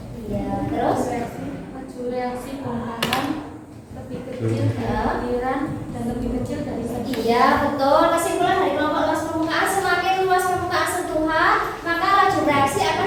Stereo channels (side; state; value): both; identical; correlation 1.00